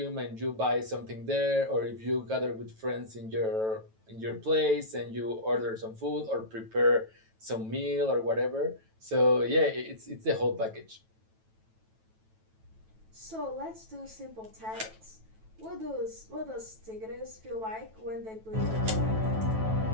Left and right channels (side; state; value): left; late; 9.1 ms